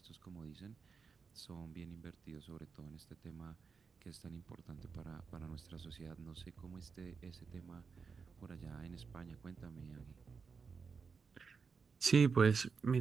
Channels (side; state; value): left; quieter; 5.4 dB